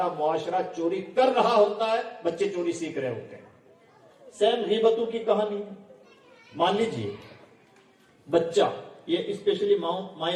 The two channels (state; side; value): identical; both; correlation 1.00